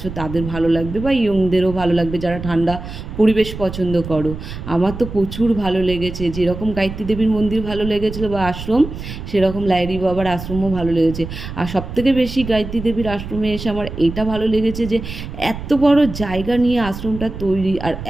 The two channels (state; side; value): noise; right; rumble, 9 dB below the sound